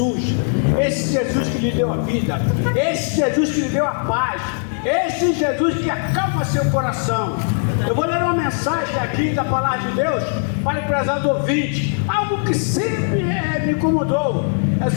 Esse Jesus que lhe deu a vida, esse Jesus que lhe deu a paz, esse Jesus que acalma seu coração. Eu vou ler uma mensagem aqui da palavra de Deus para o prezado ouvinte, algo que sempre me incomodou. É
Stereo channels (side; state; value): right; silent; digital silence